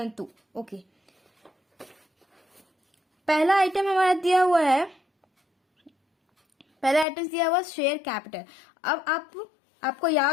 ओके। पहला आइटम हमारा दिया हुआ है, शेयर कैपिटल। अब आपको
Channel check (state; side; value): drops out; right; at 7.1 s